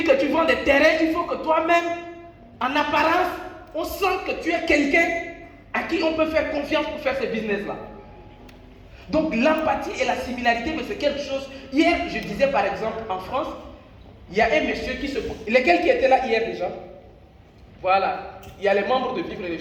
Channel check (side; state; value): both; identical; correlation 1.00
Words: que tu vends des terrains, il faut que toi-même, en apparence, on sent que tu es quelqu'un à qui on peut faire confiance pour faire ce business-là. Donc l'empathie et la similarité, mais c'est quelque chose. Hier, je disais par exemple, en France, il y a un monsieur qui se... Lesquels qui étaient là hier déjà? Voilà. Il y a les membres de Vivre et